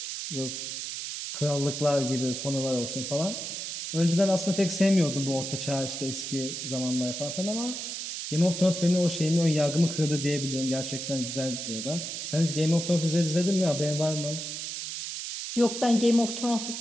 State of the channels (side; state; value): right; noise; hiss, 5 dB below the sound